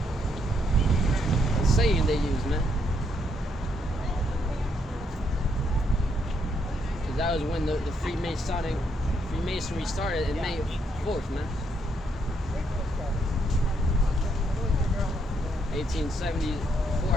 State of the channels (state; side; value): normal; both; correlation 0.74